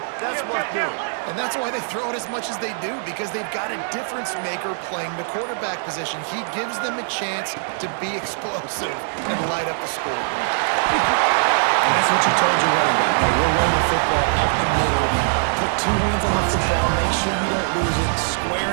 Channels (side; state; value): left; silent; 64 dB below the other